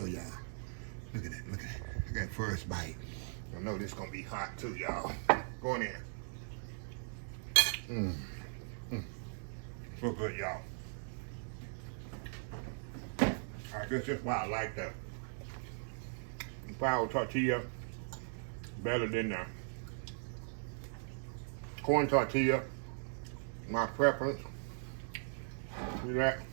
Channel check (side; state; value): left; silent; digital silence